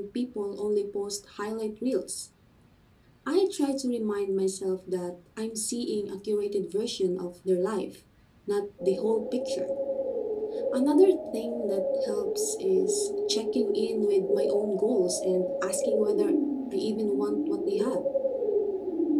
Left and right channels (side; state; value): both; identical; correlation 1.00